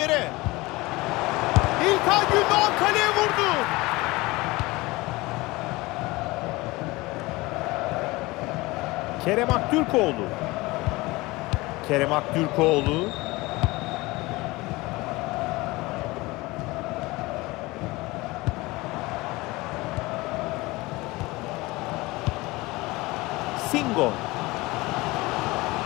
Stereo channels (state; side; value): quieter; right; 21.7 dB